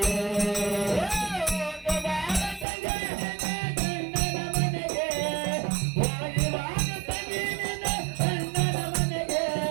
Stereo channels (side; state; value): left; drops out; at 2.7 s